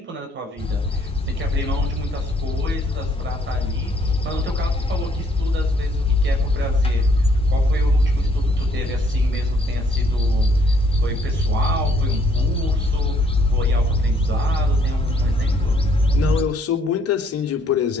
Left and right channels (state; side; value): normal; both; correlation 0.66